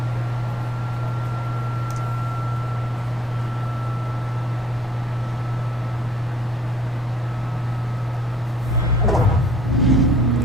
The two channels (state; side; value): normal; both; correlation 0.59